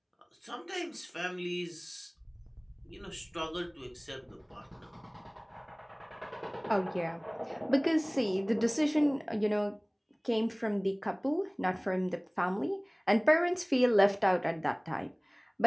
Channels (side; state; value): both; identical; correlation 1.00